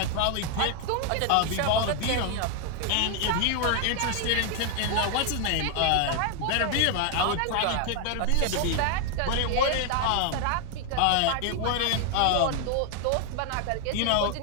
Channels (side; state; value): both; different; correlation 0.00